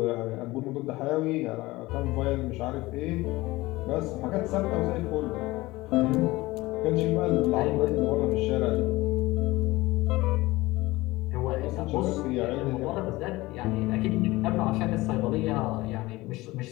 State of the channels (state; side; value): quieter; right; 19.9 dB